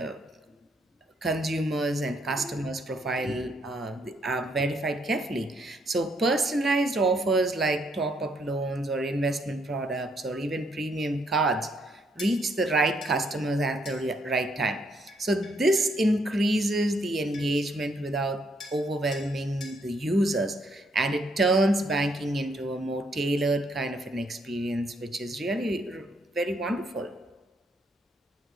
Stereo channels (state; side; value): normal; both; correlation 0.72